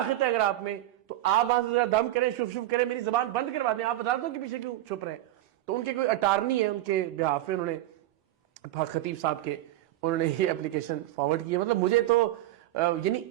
ہے اگر آپ میں, تو آپ وہاں سے ذرا دم کریں, شف شف کریں, میری زبان بند کروا دیں. آپ عدالتوں کے پیچھے کیوں چھپ رہے ہیں؟ تو ان کے کوئی اٹارنی ہے, ان کے بہاف میں انہوں نے خطیب صاحب کے انہوں نے یہ اپلیکیشن فارورڈ کی ہے. مطلب مجھے تو یعنی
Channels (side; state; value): left; quieter; 14.9 dB